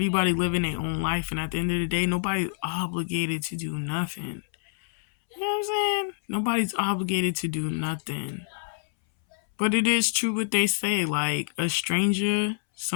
living their own life, and at the end of the day, nobody's obligated to do nothing. You know what I'm saying? Nobody's obligated to do nothing. But it is true what they say, like a stranger,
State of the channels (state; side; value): silent; right; 60 dB below the other